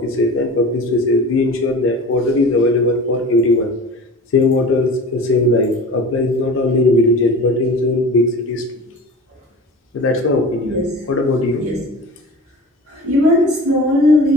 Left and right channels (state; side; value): normal; both; correlation 0.37